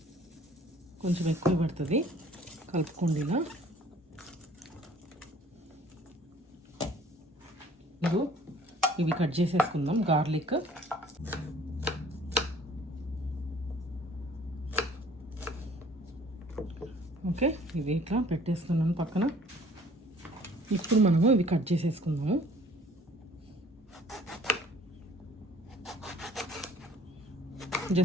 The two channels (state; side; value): normal; both; correlation 0.53